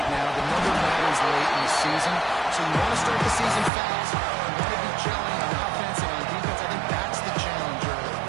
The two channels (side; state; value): left; drops out; at 3.7 s